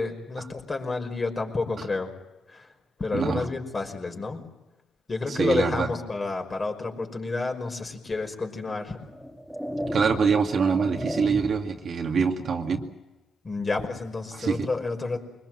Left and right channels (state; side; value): normal; both; correlation 0.85